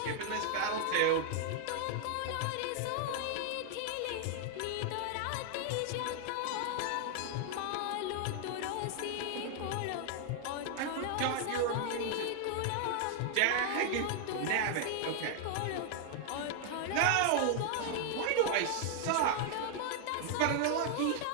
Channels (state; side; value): different; both; correlation 0.00